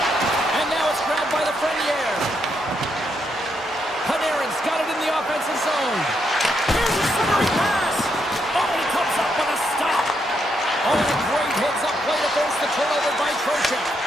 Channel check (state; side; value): normal; both; correlation 0.78